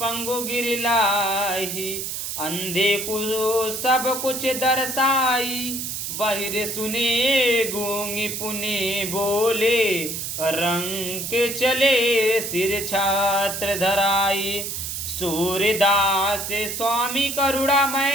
पंगु गिरलाई, अंधे को सब कुछ दर्शाई, बहिर सुने गूंगी पुनि बोले, रंग के चले सिर छात्र धराई, सूर्यदास स्वामी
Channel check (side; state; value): right; noise; hiss, 5 dB below the sound